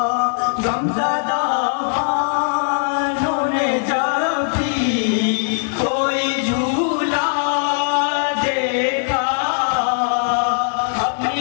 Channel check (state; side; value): silent; right; digital silence